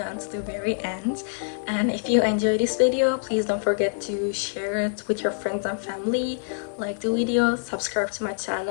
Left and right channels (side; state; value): right; silent; digital silence